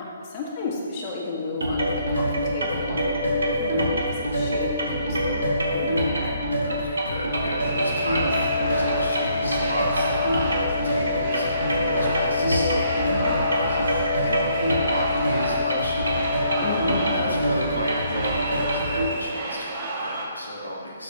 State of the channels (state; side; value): inverted; both; correlation -0.68